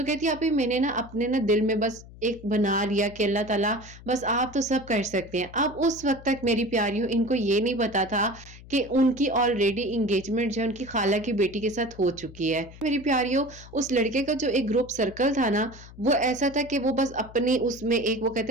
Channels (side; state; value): left; noise; hum, 18 dB below the sound